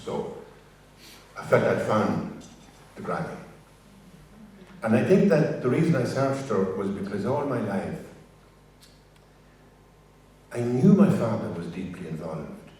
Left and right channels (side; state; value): both; identical; correlation 1.00